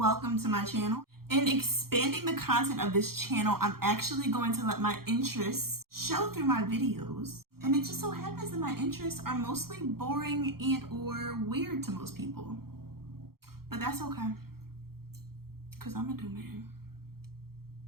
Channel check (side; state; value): left; late; 0.94 ms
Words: to my channel. In expanding the content of this channel, I'm actually going to let my interests show through my videos. And it just so happens that my interests are mostly boring and or weird to most people. But that's okay, because I'm a do man.